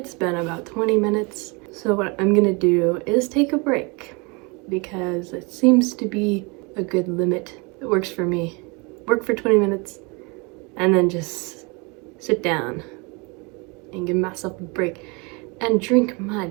been about 20 minutes. So what I'm gonna do is take a break because it seems to be a good limit. It works for me. Work for 20 minutes and then just sit down and give myself a break and drink my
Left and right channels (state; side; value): quieter; left; 29.6 dB